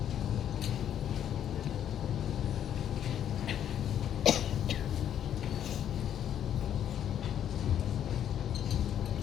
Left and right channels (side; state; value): right; quieter; 9.9 dB